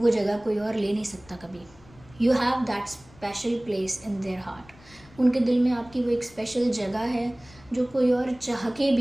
जगह कोई और ले नहीं सकता कभी। You have that special place in their heart. उनके दिल में आपकी वो एक स्पेशल जगह है जो कोई और चाह के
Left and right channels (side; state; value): left; noise; rumble, 25 dB below the sound